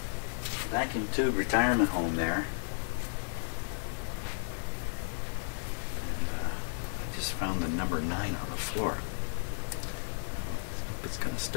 vacuum tube retirement home there. And I just found the number 9 on the floor. I hope it's gonna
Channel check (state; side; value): silent; right; digital silence